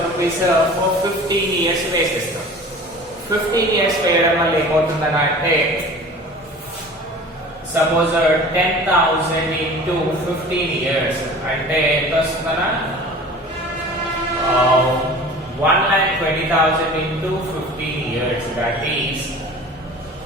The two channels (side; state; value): both; normal; correlation 0.41